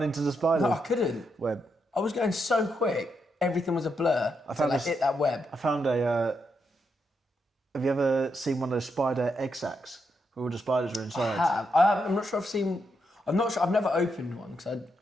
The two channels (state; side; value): normal; both; correlation 0.81